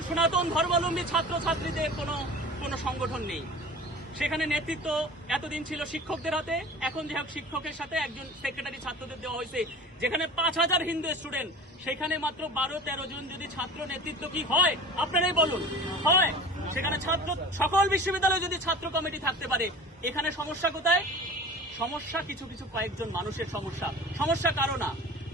সনাতন ধর্মাবলম্বী ছাত্রছাত্রীদের কোনো সংগঠন নেই। সেখানে নেতৃত্ব এতদিন ছিল শিক্ষকদের হাতে, এখন যে হোক শিক্ষকের সাথে একজন সেক্রেটারি ছাত্রদের দেওয়া হয়েছে। যেখানে 5000 হিন্দু স্টুডেন্ট, সেখানে মাত্র 12-13 জন যদি ছাত্র নেতৃত্ব কি হয় আপনারাই বলুন, হয়? সেখানে সকল বিশ্ববিদ্যালয়ে যদি ছাত্র কমিটি থাকতে পারে, এখানে সমস্যা কোথায়? সমস্যা কিছু কয়েকজন মানুষের সমস্যা কারো না।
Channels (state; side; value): normal; both; correlation 0.39